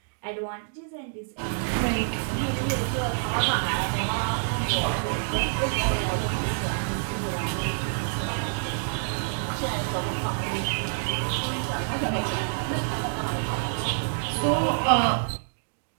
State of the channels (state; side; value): silent; left; digital silence